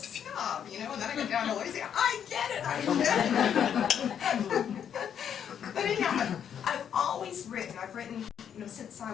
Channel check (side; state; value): right; quieter; 8.6 dB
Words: and then I go down to Louisiana. I get it. But anyhow, I've always written. I've written, since I